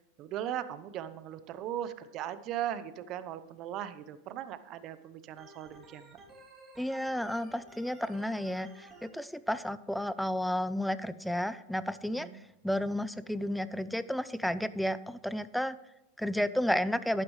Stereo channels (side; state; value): both; normal; correlation 0.86